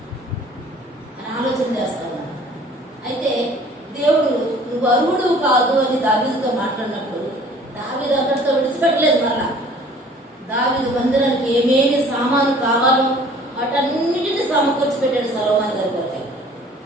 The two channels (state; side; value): normal; both; correlation 0.51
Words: అని ఆలోచన చేస్తా ఉన్నాడు. అయితే దేవుడు నువ్వు అర్హుడు కాదు అని దావీదుతో మాట్లాడినప్పుడు దావీదు అక్కడితో విడిచిపెట్టలేదు. మళ్ళా దావీదు మందిరానికి ఏమేమి సామాను కావాలో వాటన్నిటిని సమకూర్చి పెట్టాడు సొలొమోను గారి కొరకు.